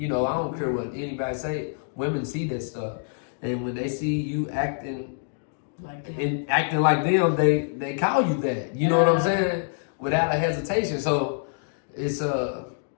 don't care what anybody say. Women see that stuff. And when they see you acting like them, they call you that. You know what I'm saying? Without a hesitation. So, it's a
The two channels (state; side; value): silent; right; digital silence